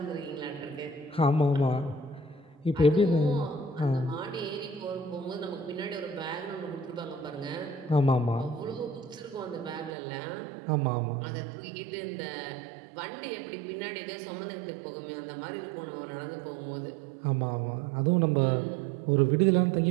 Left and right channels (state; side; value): drops out; left; at 9.9 s